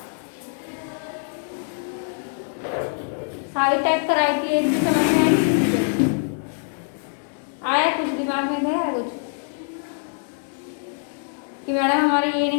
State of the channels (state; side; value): silent; right; 63 dB below the other